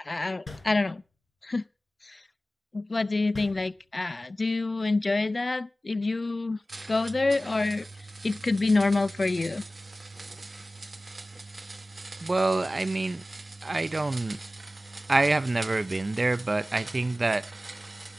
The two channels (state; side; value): normal; both; correlation 0.96